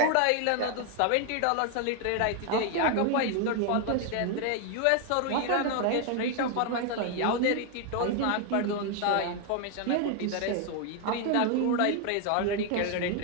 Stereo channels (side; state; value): both; different; correlation 0.01